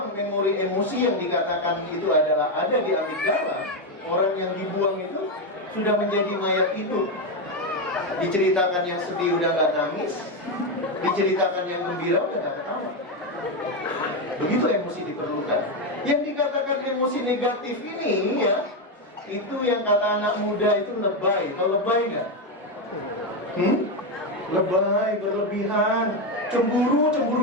memori emosi yang dikatakan itu adalah ada di amigdala. Orang yang dibuang itu sudah menjadi mayat itu. Diceritakan yang sedih udah gak nangis, diceritakan yang gembira udah gak ketawa. Begitu emosi diperlukan. Yang dikatakan emosi negatif ini, ya, itu yang kata anak muda itu lebay. Tahu lebay nggak? Lebay, berlebihan, cemburu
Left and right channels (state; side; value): normal; both; correlation 0.08